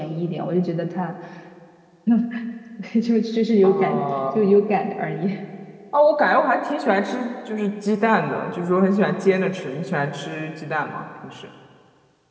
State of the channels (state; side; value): identical; both; correlation 1.00